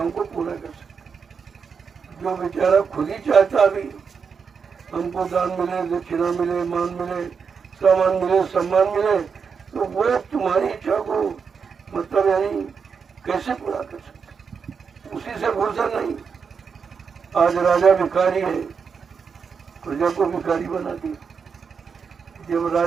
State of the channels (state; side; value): quieter; left; 6.0 dB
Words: को पूरा कर सकता। जो बेचारा खुद ही चाहता भी हमको दान मिले, दक्षिणा मिले, मान मिले, सामान मिले, सम्मान मिले, तो वो तुम्हारी इच्छा को मतलब यानी कैसे पूरा कर सकते? उसी से फुर्सत नहीं। आज राजा भिखारी है, प्रजा को भिखारी बना दिया। जब